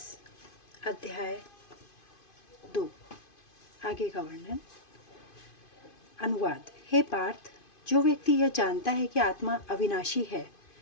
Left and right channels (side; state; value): right; late; 2.5 ms